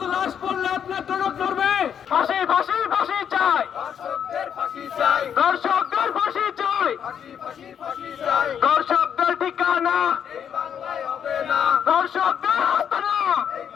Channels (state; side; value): quieter; right; 8.3 dB